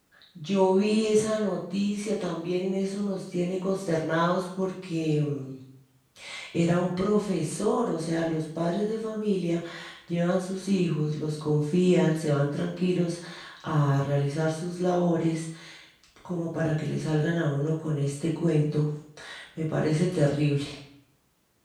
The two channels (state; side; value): identical; both; correlation 1.00